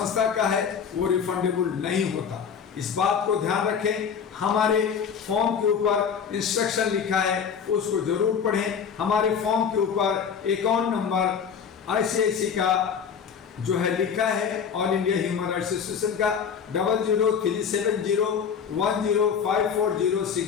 का है, वो रिफंडेबल नहीं होता। इस बात को ध्यान रखें। हमारे फॉर्म के ऊपर इंस्ट्रक्शन लिखा है, उसको जरूर पढ़ें। हमारे फॉर्म के ऊपर अकाउंट नंबर ICICI का जो है लिखा है, all India Human Rights Association का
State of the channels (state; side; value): quieter; right; 7.0 dB